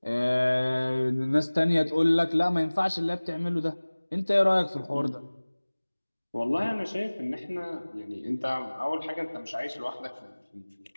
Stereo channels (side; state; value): both; inverted; correlation -1.00